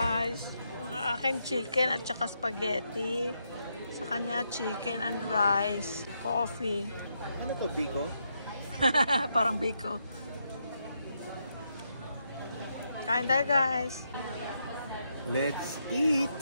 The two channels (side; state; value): both; inverted; correlation -0.81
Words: Akin chicken at saka spaghetti. Sa kanya chicken and rice. Coffee. Ano to, Biko? Parang Biko. Kain tayo guys. Let's eat!